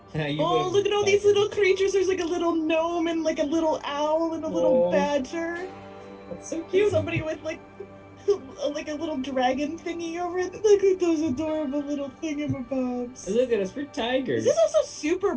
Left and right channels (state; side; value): identical; both; correlation 1.00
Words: You Oh, would've look at all these liked it. little creatures. There's like a little gnome and like a little owl and a little Oh. badger. That's so And cute. somebody with like a little dragon thingy over it. Look at those adorable little thingamabobs. Look at us, we're tigers. This is also super